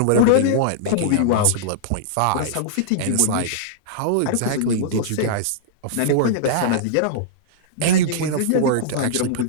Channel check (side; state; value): both; different; correlation -0.02